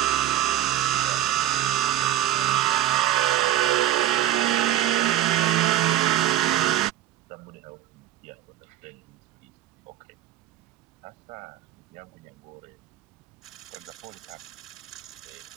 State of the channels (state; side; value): quieter; left; 13.0 dB